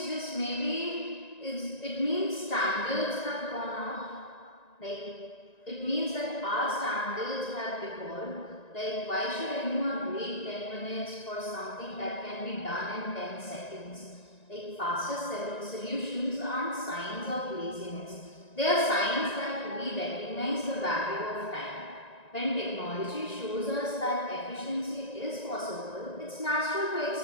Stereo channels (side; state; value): right; late; 1.9 ms